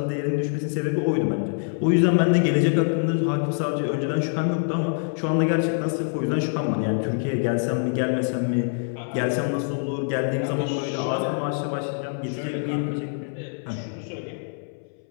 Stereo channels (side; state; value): right; silent; 62 dB below the other